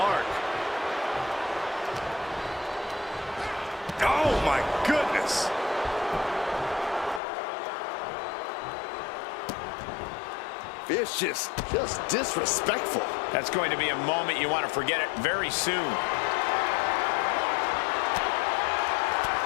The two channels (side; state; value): right; drops out; at 7.2 s